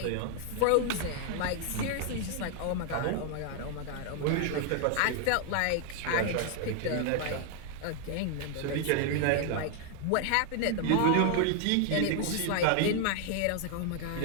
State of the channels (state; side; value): different; both; correlation 0.00